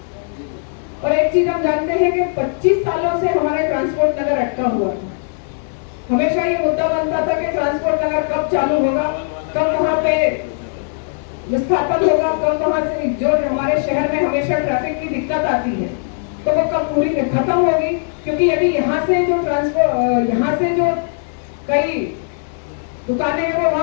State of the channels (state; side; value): silent; right; 61 dB below the other